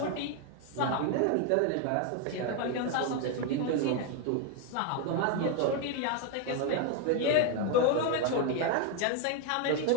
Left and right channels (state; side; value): different; both; correlation 0.01